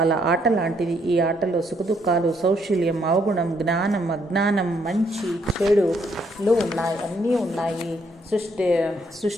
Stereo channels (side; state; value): both; normal; correlation 0.71